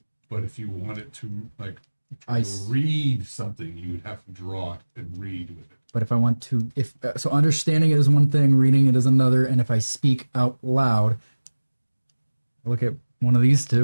But if you want it to, like, I to s- read something, you would have to draw it and read with it. But if I want to, so understanding it is one thing, reading it is another, and if I speak out loud, I look at one of these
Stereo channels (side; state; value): both; inverted; correlation -1.00